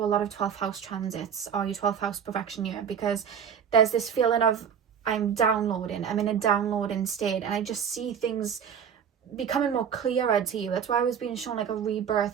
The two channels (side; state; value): left; quieter; 7.8 dB